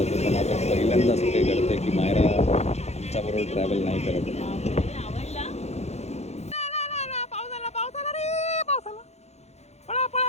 पण आता पहिल्यांदा असं काही घडतं की मायरा आमच्याबरोबर ट्रॅव्हल नाही करत. आवडला?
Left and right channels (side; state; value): right; late; 0.31 ms